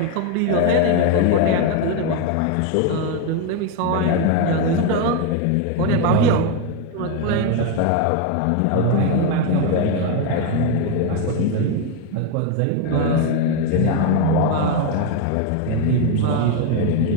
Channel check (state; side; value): different; both; correlation 0.01